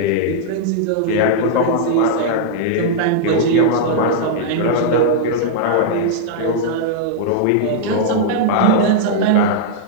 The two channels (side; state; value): both; different; correlation -0.02